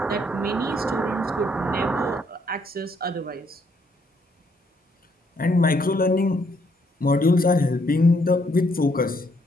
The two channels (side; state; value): both; normal; correlation 0.71